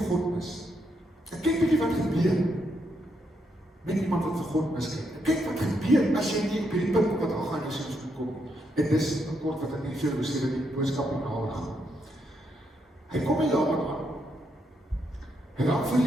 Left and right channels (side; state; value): both; normal; correlation 0.78